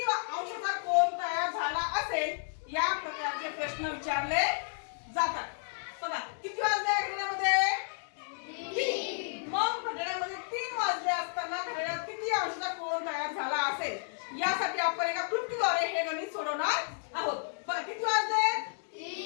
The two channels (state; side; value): silent; right; digital silence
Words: अंशाचा कोन तयार झाला असेल या प्रकारचे प्रश्न विचारले जातात. बघा किती वाजले घड्याळामध्ये? 3. मग घड्याळामध्ये 3 वाजले असताना घड्याळात किती अंशाचा कोन तयार झाला असेल यासाठी आपण एका क्लुप्तीद्वारे हे गणित सोडवणार आहोत. बघा किती वाजले?